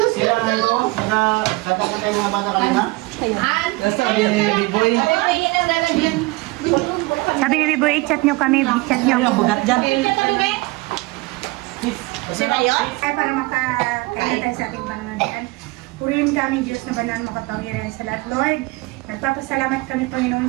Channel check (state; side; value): quieter; left; 23.1 dB